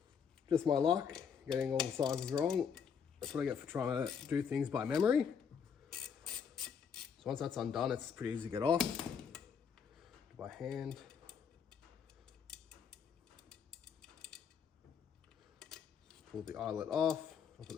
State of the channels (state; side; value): quieter; right; 6.9 dB